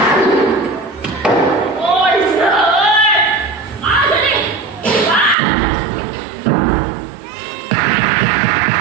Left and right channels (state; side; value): drops out; left; at 5.4 s